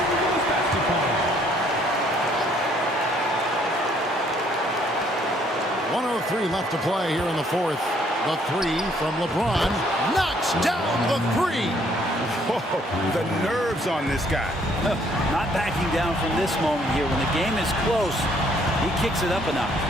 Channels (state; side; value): normal; both; correlation 0.65